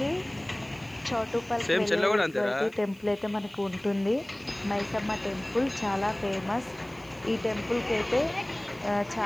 చౌటుప్పల్కి వెళ్ళే టెంపుల్ అయితే మనకు ఉంటుంది. మైసమ్మ టెంపుల్ చాలా ఫేమస్. ఈ టెంపుల్కి అయితే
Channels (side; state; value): right; noise; hiss, 27 dB below the sound